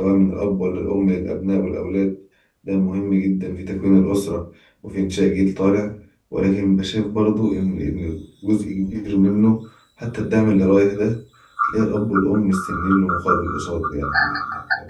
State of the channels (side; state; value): both; identical; correlation 1.00